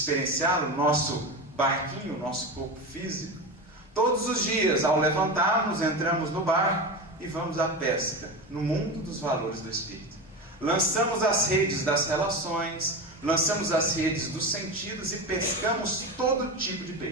o nosso barquinho, o nosso corpo físico, todos os dias, ao levantarmos, entramos no barco e vamos à pesca, no mundo dos valores do Espírito. Lançamos as redes das relações, lançamos as redes dos sentidos e pescamos todo tipo de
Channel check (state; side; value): normal; both; correlation 0.23